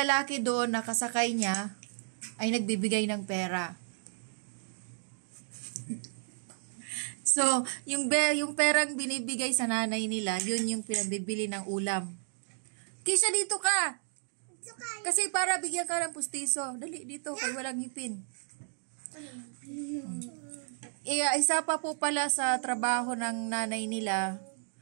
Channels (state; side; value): silent; left; digital silence